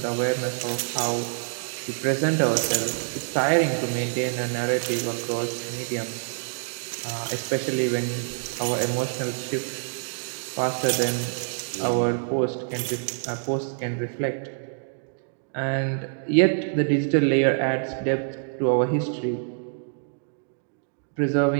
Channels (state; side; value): silent; left; digital silence